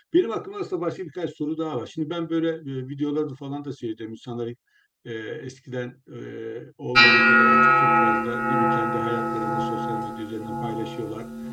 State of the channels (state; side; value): identical; both; correlation 1.00